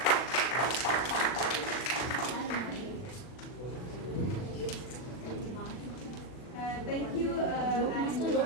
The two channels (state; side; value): late; right; 40 ms